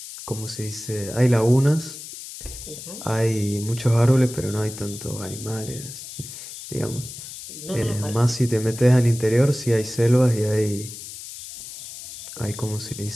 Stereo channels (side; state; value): left; noise; hiss, 12 dB below the sound